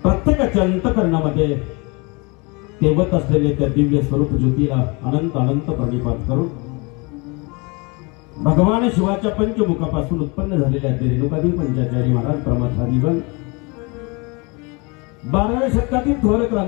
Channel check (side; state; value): right; quieter; 28.9 dB